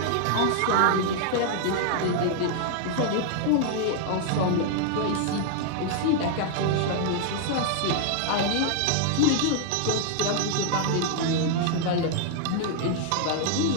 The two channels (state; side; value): different; both; correlation 0.00